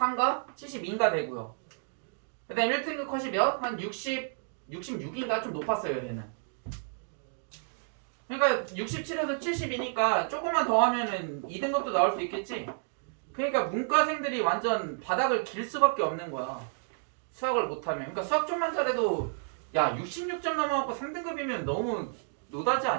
72인가 되고요. 그 다음에 1등급 컷이 몇? 한 66인가? 좀 높았어요 얘는. 그러니까 67에서 72니까 조금만 더 하면은 2등급도 나올 수 있겠지? 그러니까 문과생들이 완전 바닥을 길 수밖에 없는 거야. 수학을 못하면. 그러니까 수학 좀만 잘해도 야 66점 넘어갖고 3등급이면 너무 노다지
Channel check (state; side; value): silent; left; digital silence